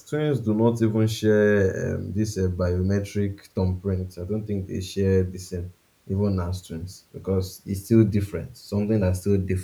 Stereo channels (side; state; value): both; identical; correlation 1.00